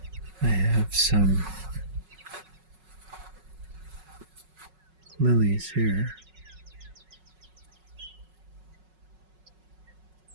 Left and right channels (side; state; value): left; late; 5.4 ms